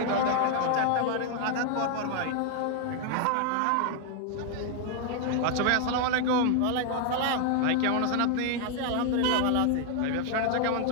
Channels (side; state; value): both; different; correlation 0.00